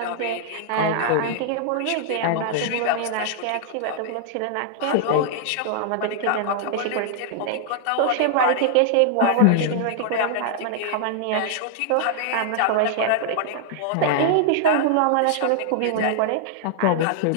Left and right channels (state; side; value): different; both; correlation -0.01